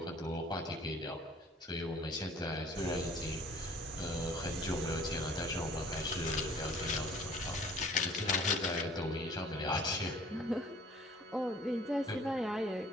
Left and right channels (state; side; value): normal; both; correlation 0.53